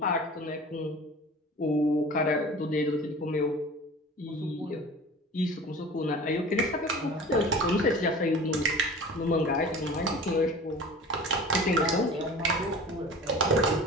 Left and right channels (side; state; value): both; normal; correlation 0.40